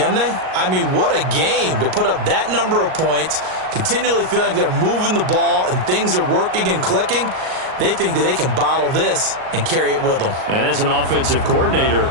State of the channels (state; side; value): late; left; 38 ms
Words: they? I mean, what a game to put up that number of points, continually feeling they're moving the ball and things are working and clicking. They think that they can bottle this and carry it with them. And as an offensive coordinator,